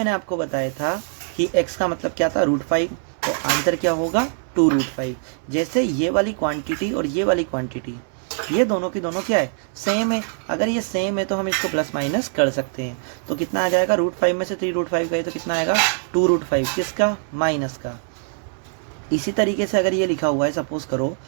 आपको बताया था कि x का मतलब क्या था, √5, तो आंसर क्या होगा, 2√5। जैसे ये वाली क्वांटिटी और ये वाली क्वांटिटी, ये दोनों की दोनों क्या है, सेम है। अगर ये सेम है तो हम इसको प्लस माइनस कर सकते हैं, तो कितना आ जाएगा, √5 में से 3√5 गए तो कितना आएगा, 2√5, किसका, माइनस का। इसी तरीके से अगर ये लिखा हुआ है, सपोज करो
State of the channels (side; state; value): left; silent; 64 dB below the other